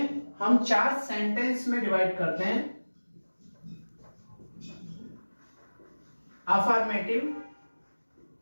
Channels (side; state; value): both; inverted; correlation -1.00